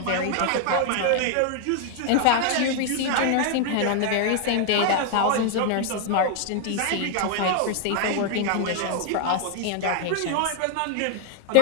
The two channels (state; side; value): different; both; correlation 0.00